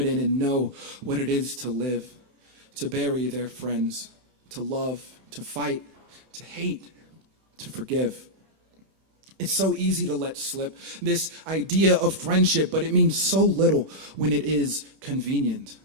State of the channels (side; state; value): left; late; 14 ms